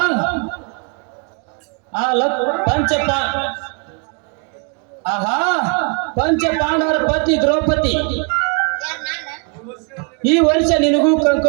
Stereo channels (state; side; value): quieter; left; 37.7 dB